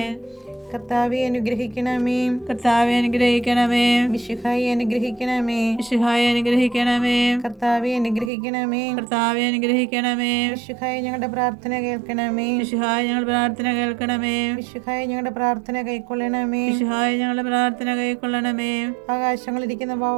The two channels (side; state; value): left; drops out; at 8.3 s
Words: കർത്താവെ അനുഗ്രഹിക്കണമേ. കർത്താവെ അനുഗ്രഹിക്കണമേ. മിശിഹായെ അനുഗ്രഹിക്കണമേ. മിശിഹായെ അനുഗ്രഹിക്കണമേ. കർത്താവെ അനുഗ്രഹിക്കണമേ. കർത്താവെ അനുഗ്രഹിക്കണമേ. മിശിഹായെ ഞങ്ങളുടെ പ്രാർത്ഥന കേൾക്കണമേ. മിശിഹായെ ഞങ്ങളുടെ പ്രാർത്ഥന കേൾക്കണമേ. മിശിഹായെ ഞങ്ങളുടെ പ്രാർത്ഥന കൈക്കൊള്ളണമേ. മിശിഹായെ ഞങ്ങളുടെ പ്രാർത്ഥന കൈക്കൊള്ളണമേ. ആകാശങ്ങളിരിക്കുന്ന